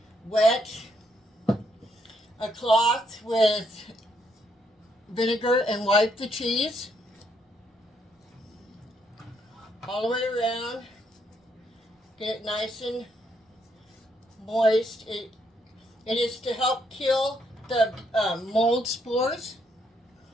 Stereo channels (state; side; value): normal; both; correlation 0.74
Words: wet a cloth with vinegar and wipe the cheese all the way around, get it nice and moist. It is to help kill the mold spores